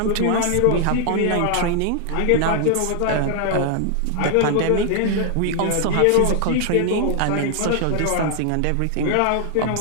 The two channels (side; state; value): both; different; correlation 0.00